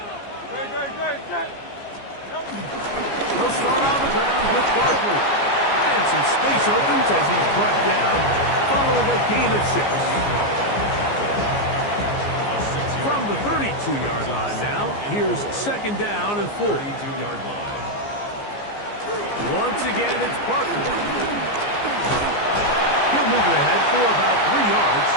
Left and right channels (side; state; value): right; late; 15 ms